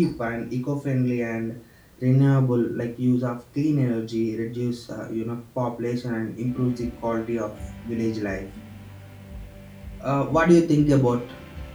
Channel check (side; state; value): both; identical; correlation 1.00